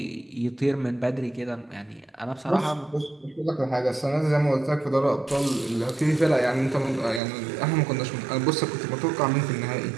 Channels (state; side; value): drops out; left; at 7.2 s